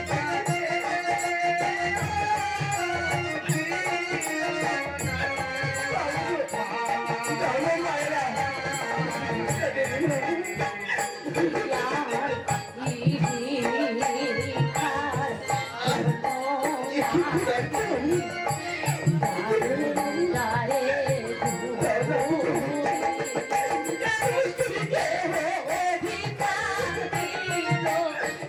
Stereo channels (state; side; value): identical; both; correlation 1.00